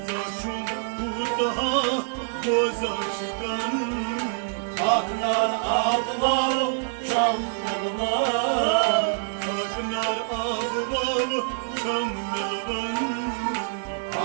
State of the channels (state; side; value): silent; left; 59 dB below the other